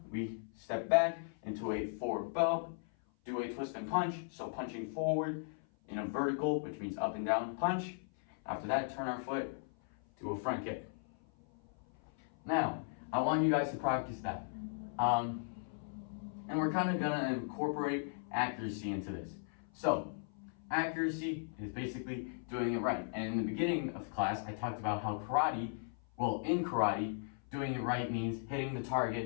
we step back into a forward bow, do a twist and punch. So punching forward in a vertical, which means up and down punch. After that, turn our foot, do a front kick. Now, I want you guys to practice that. And we're kind of gonna incorporate accuracy into this. So, accuracy is basically doing it right. And in the beginning of class, I talked about how in karate, doing it right means hitting the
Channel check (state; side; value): silent; right; 53 dB below the other